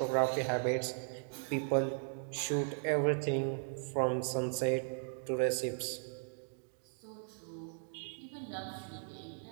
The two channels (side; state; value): left; silent; digital silence